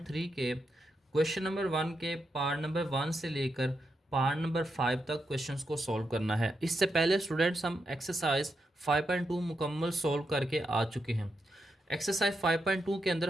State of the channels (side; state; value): both; normal; correlation 0.84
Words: के क्वेश्चन नंबर 1 के पार्ट नंबर 1 से लेकर पार्ट नंबर 5 तक क्वेश्चंस को सॉल्व करना है। इससे पहले स्टूडेंट्स हम एक्सरसाइज 5.2 मुकम्मल सॉल्व करके आ चुके हैं। एक्सरसाइज 5.2 के